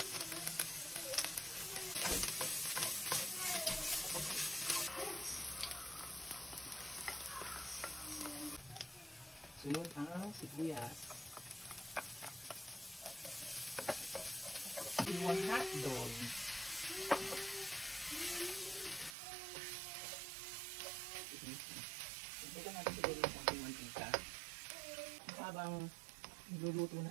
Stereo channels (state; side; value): drops out; left; at 19.2 s